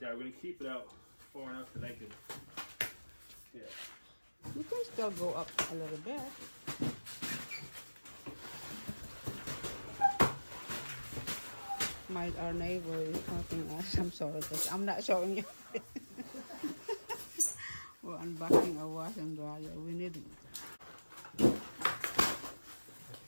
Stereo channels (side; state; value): both; inverted; correlation -1.00